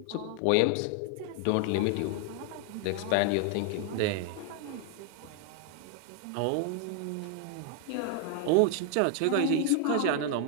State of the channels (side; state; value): both; different; correlation 0.00